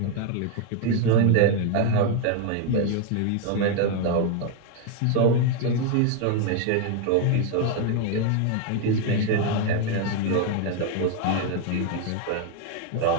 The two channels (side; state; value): both; different; correlation 0.01